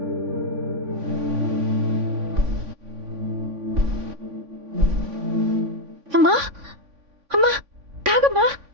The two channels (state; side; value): late; left; 3.5 ms